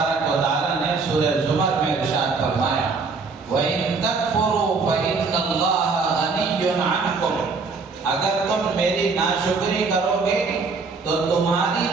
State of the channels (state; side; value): quieter; left; 4.5 dB